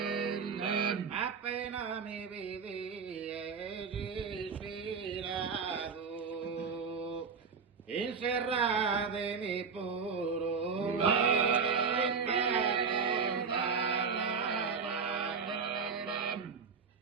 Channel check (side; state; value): left; quieter; 5.6 dB